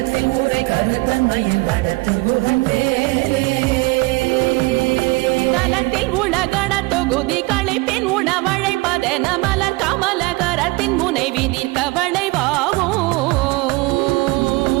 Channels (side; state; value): left; quieter; 23.4 dB